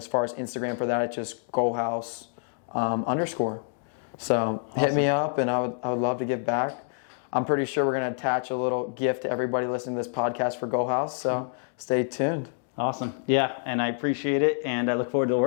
far as Instagram for that, it's just goalhouse _ So awesome. Hit me up, and I would love to give back. I'm pretty sure we're going to attach a little gift to everybody listening to this podcast for Goalhouse, so stay tuned. Awesome. Yeah, and I appreciate it, and I look forward to the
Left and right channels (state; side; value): silent; right; digital silence